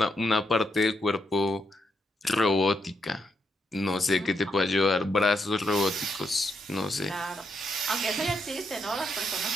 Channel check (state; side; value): normal; both; correlation 0.80